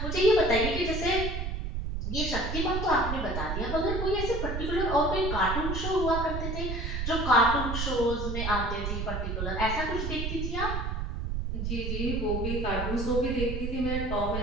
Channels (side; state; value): right; noise; rumble, 3 dB below the sound